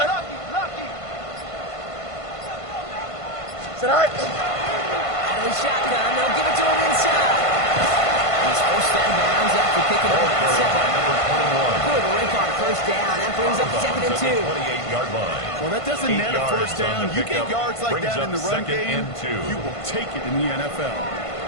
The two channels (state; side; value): late; right; 1.5 ms